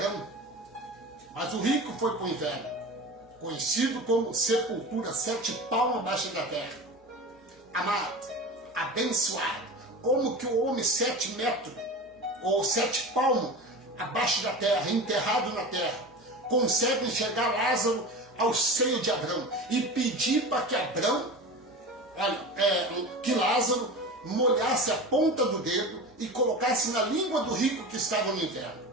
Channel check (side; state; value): both; normal; correlation 0.31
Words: mas o rico foi para o inferno, conhecido como sepultura, 7 palmos abaixo da terra. Amado, abençoado, como que o homem 7 metros, ou 7 palmos abaixo da terra, enterrado na terra, consegue enxergar Lázaro ao seio de Abraão e pedir para que que Lázaro molhasse a ponta do dedo e colocasse na língua do rico que estava no inferno.